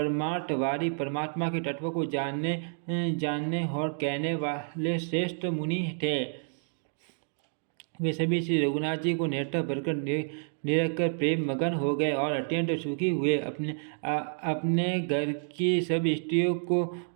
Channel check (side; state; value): left; silent; digital silence